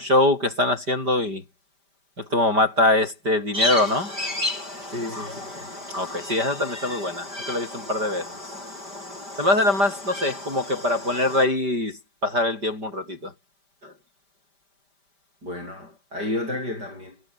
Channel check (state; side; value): late; left; 5.1 ms